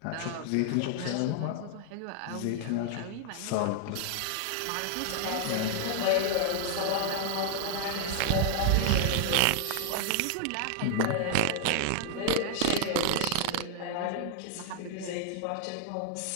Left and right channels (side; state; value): both; different; correlation 0.00